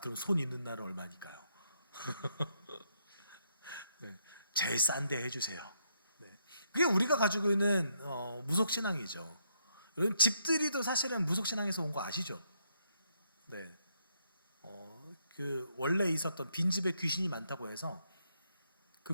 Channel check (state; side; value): inverted; both; correlation -0.76